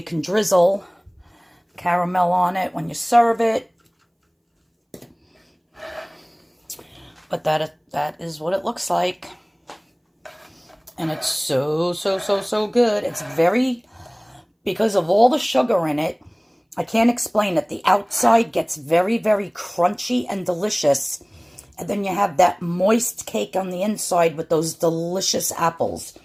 can drizzle caramel on it when you serve it. But that is what it looks like. And it's so good. It's very, because of all the sugar in it, I can't explain it. The outside gets very, very crunchy and delicious. And then you have that moist cake on the inside with those delicious apples.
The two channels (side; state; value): both; identical; correlation 1.00